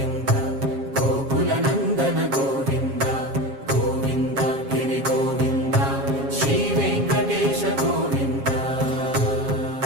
గోకుల నందన గోవింద గోవింద గిరి గోవింద శ్రీ వెంకటేశ గోవింద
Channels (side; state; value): left; late; 7.4 ms